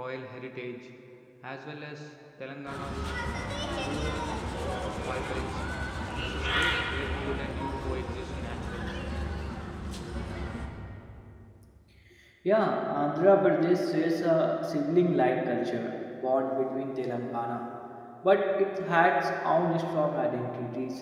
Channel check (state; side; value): identical; both; correlation 1.00